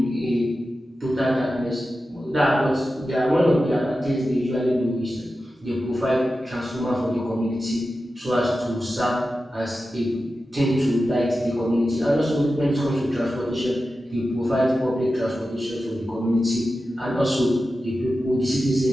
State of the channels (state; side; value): normal; both; correlation 0.92